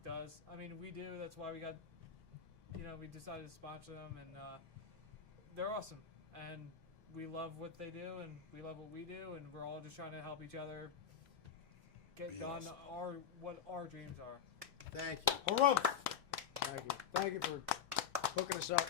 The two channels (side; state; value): right; quieter; 8.2 dB